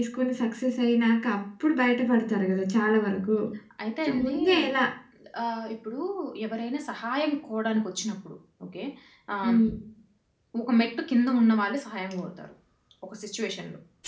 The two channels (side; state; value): both; identical; correlation 1.00